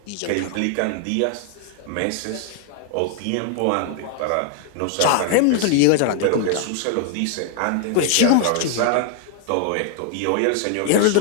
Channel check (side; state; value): both; different; correlation 0.00